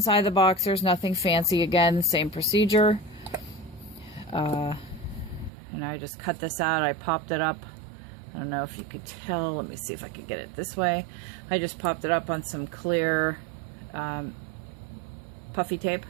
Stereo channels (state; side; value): drops out; left; at 5.5 s